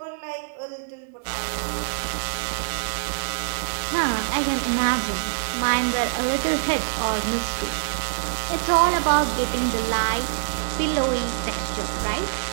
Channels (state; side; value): silent; left; 62 dB below the other